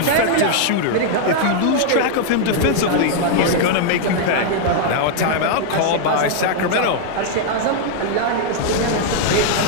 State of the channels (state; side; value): different; both; correlation 0.00